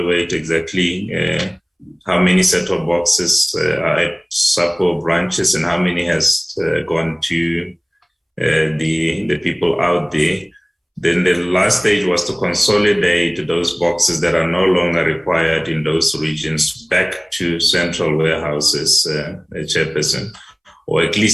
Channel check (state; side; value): identical; both; correlation 1.00